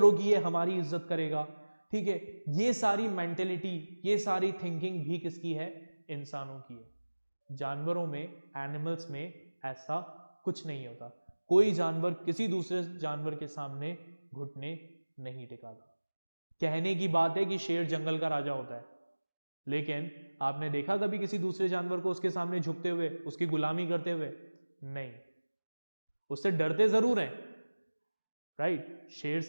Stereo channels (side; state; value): both; inverted; correlation -1.00